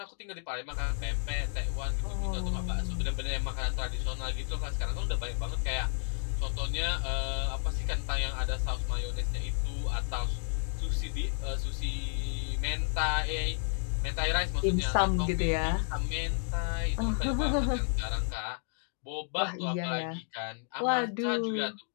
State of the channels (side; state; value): right; silent; 57 dB below the other